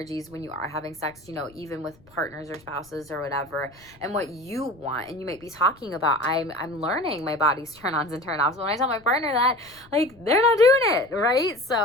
when you are having sex, even with partners or spouses or whatever, and what you want. And you might be talking about, I'm learning my body's turn-ons and turn-offs. When I tell my partner that, like, they're not doing it, right?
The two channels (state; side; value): noise; left; rumble, 27 dB below the sound